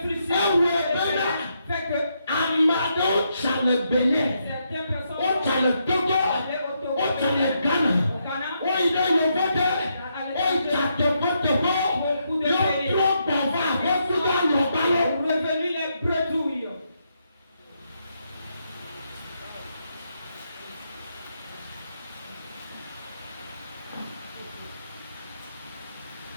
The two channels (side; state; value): both; inverted; correlation -0.79